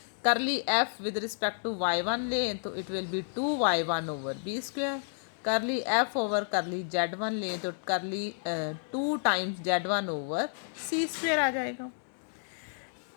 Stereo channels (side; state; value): right; silent; digital silence